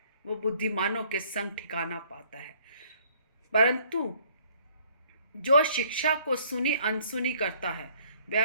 वो बुद्धिमानों के संग ठिकाना पाता है। परंतु जो शिक्षा को सुनी अनसुनी करता है, वह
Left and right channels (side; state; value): both; inverted; correlation -0.60